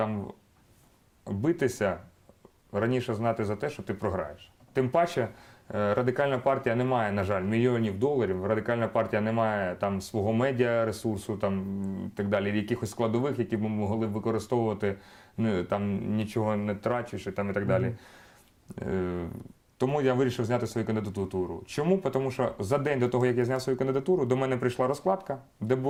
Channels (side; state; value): both; identical; correlation 1.00